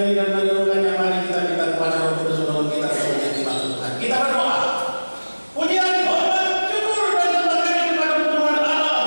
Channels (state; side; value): inverted; both; correlation -1.00